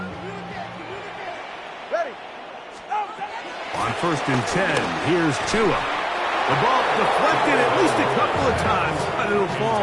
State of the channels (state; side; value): identical; both; correlation 1.00